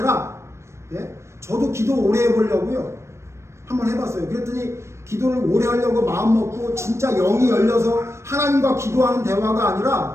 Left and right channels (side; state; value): left; late; 0.13 ms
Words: 저도 기도 오래 해보려고요 한번 해봤어요. 그랬더니 기도를 오래 하려고 마음 먹고 진짜 영이 열려서 하나님과 기도하는 대화가